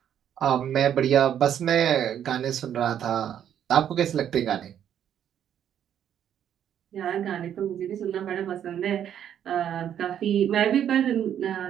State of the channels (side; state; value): left; quieter; 9.7 dB